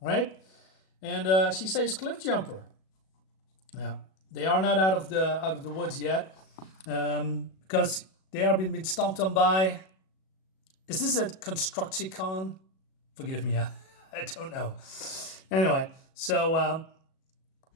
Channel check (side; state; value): right; late; 37 ms